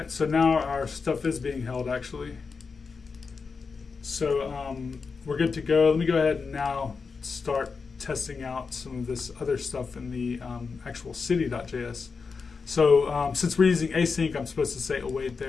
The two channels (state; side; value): quieter; right; 5.0 dB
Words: so now our stuff is being held actually. So we're good to go. Let me go ahead and now start testing out some of this other stuff in the actual city.js. So since we're using async, I'm supposed to say await